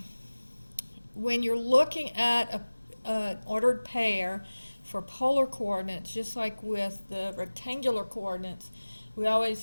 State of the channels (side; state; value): both; inverted; correlation -1.00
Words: when you're looking at an ordered pair for polar coordinates, just like with the rectangular coordinates, we